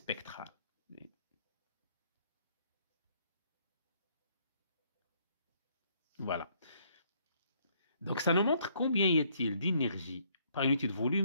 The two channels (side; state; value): both; inverted; correlation -0.67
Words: Voilà. Donc, ça nous montre combien y a-t-il d'énergie par unité de